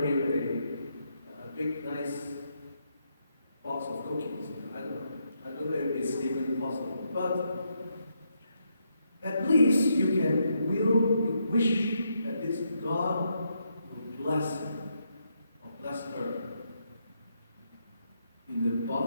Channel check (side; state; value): both; inverted; correlation -0.79